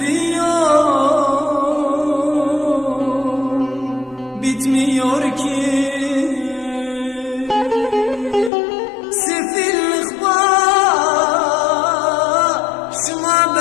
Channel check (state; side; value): drops out; right; at 8.5 s